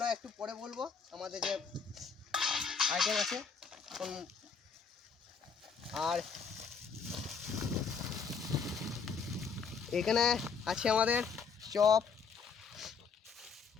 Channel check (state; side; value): quieter; right; 5.7 dB